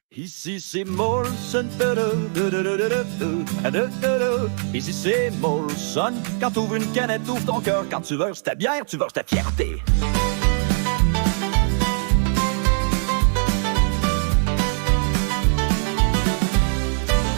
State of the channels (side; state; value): left; silent; 56 dB below the other